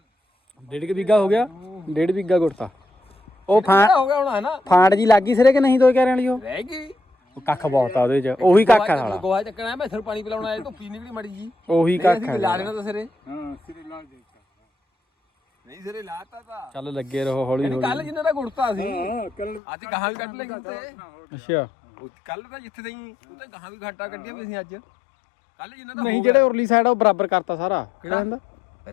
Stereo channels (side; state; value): right; drops out; at 19.6 s